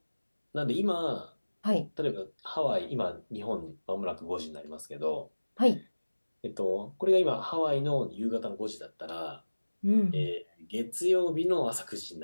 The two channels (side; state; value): both; inverted; correlation -1.00